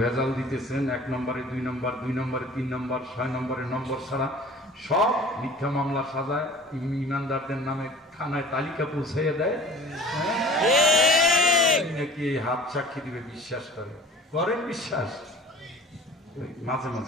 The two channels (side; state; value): both; normal; correlation 0.45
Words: ভেজাল দিতেছেন, 1 নম্বরে 2 নম্বর, 2 নম্বরে 3 নম্বর, 6 নম্বরে নম্বর ছাড়া সব মিথ্যা মামলা সাজায়, ইমানদারদের নামে থানায় তালিকা পৌঁছাইয়া দেয়। নাকি হাত সাক্ষী দিবে বিশ্বাস করে? করেন বিশ্বাস? মাঝে